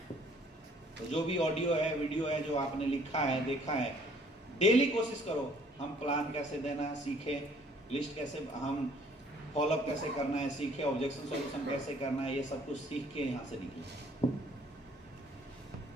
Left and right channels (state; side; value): normal; both; correlation 0.59